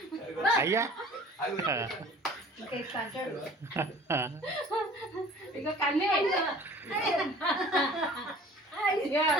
అయ్యా ఇక కన్నే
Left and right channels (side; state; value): both; normal; correlation 0.47